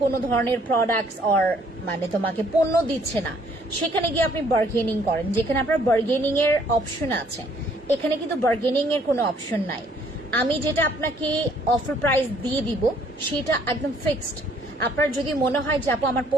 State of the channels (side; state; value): both; normal; correlation 0.63